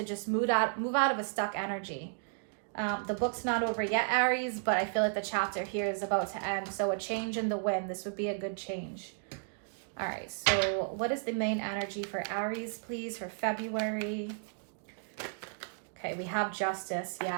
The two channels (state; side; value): silent; left; digital silence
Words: just move out of a stuck energy. The book's not over yet, Aries, but I feel like the chapter here is about to end. So a change in the wind, this would be a good change. All right, so what is the main energy for Aries, please, for February? Okay, we have justice,